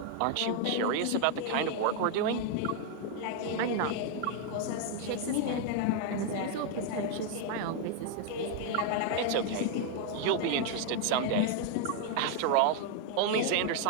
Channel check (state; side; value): different; both; correlation 0.00